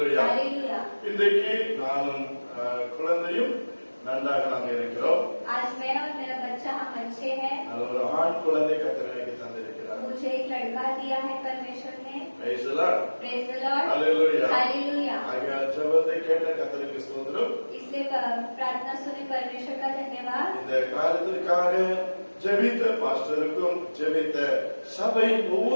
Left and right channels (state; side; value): inverted; both; correlation -1.00